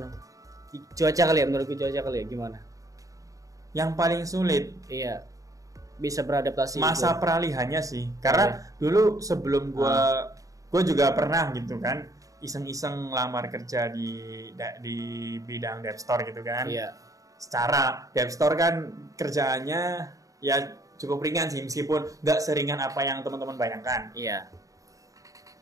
Cuaca kali ya, menurutku cuaca kali ya, gimana? Yang paling sulit? Iya. Bisa beradaptasi masa itu. Peralihannya sih, karena dulu sebelum gue juga pernah gitu kan iseng-iseng lamar kerja di bidang dev store gitu kan. Secara dev store kan kerjaannya ya cukup ringan sih, meskipun nggak seringan apa yang teman-teman bayangkan.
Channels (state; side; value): late; left; 0.16 ms